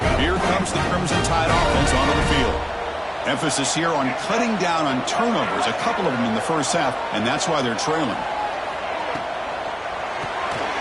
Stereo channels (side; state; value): both; identical; correlation 1.00